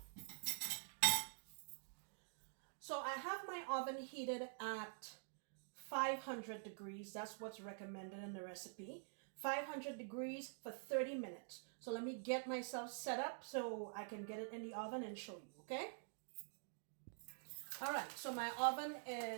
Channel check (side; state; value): left; silent; digital silence